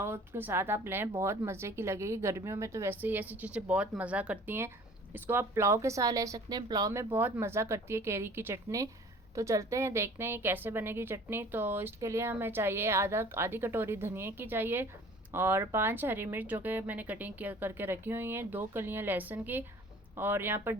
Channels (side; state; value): both; normal; correlation 0.48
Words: उसके साथ आप लें, बहुत मज़े की लगेगी। गर्मियों में तो वैसे ही ऐसी चीज़ें बहुत मज़ा करती हैं। इसको आप पुलाव के साथ ले सकते हैं, पुलाव में बहुत मज़ा करती है केरी की चटनी। तो चलते हैं देखते हैं कैसे बनेगी चटनी। तो इसके लिए हमें चाहिए आधी कटोरी धनिया की चाहिए, और 5 हरी मिर्च जो कि मैंने कटिंग करके रखी हुई हैं, 2 कलियां लहसुन की, और यहाँ पर